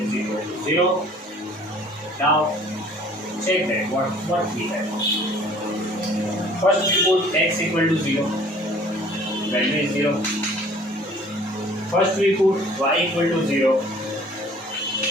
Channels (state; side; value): normal; both; correlation 0.53